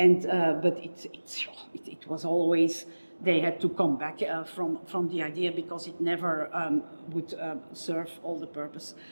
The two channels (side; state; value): both; inverted; correlation -1.00